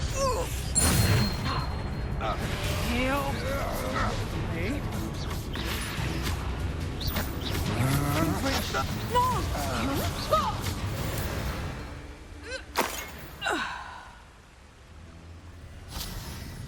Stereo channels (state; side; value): identical; both; correlation 1.00